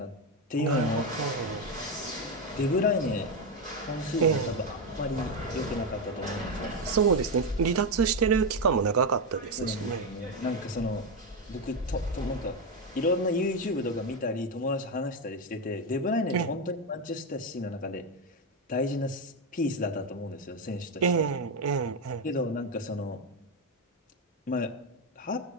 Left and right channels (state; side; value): normal; both; correlation 0.08